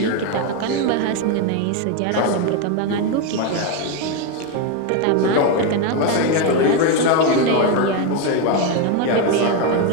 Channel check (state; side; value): different; both; correlation 0.02